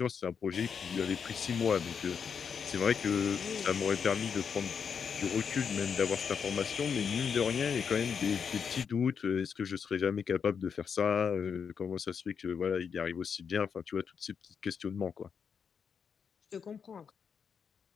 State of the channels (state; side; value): quieter; right; 6.7 dB